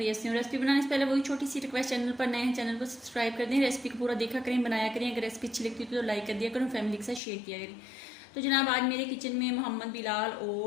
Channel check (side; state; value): right; drops out; at 7.2 s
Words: से हूँ। रेसिपी बनाने से पहले वही छोटी सी रिक्वेस्ट, चैनल पर नए हैं चैनल को सब्सक्राइब कर दें, रेसिपी को पूरा देखा करें, बनाया करें। अगर रेसिपी अच्छी लगती है तो लाइक कर दिया करें, फैमिली के साथ शेयर किया करें। तो जनाब आज मेरे किचन में मोहम्मद बिलाल